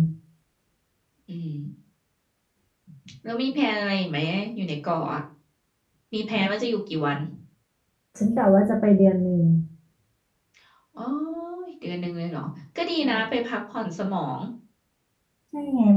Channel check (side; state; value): both; identical; correlation 1.00